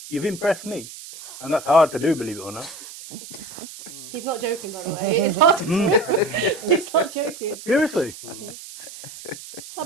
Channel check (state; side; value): noise; right; hiss, 14 dB below the sound